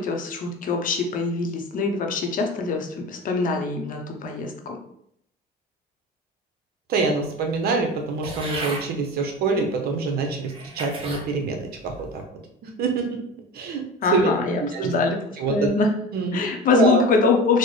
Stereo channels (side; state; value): both; normal; correlation 0.31